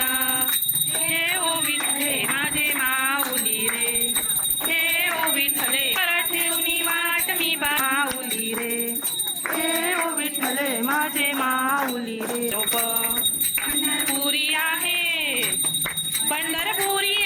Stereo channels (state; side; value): identical; both; correlation 1.00